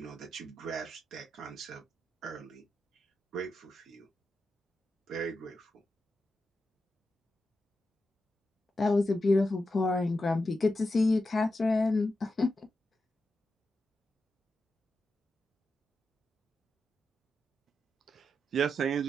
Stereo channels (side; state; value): both; normal; correlation 0.89